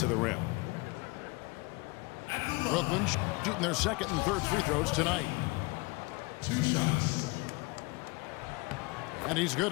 the rim. Brooklyn shooting their second and third free throws tonight. 2 shots. And he's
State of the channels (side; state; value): right; quieter; 25.5 dB